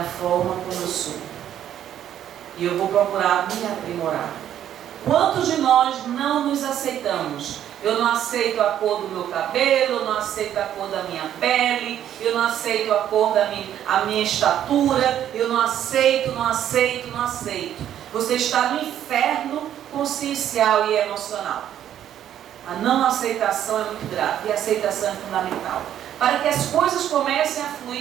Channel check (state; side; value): quieter; left; 10.7 dB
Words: forma como eu sou. E eu vou procurar me aprimorar. Quantos de nós não nos aceitamos? Eu não aceito a cor do meu cabelo, eu não aceito a cor da minha pele, eu não aceito a cor da minha estatura, eu não aceito. Você está no inferno consciencial e emocional. A não aceitação é muito grave e a aceitação é fundamental para que as coisas comecem a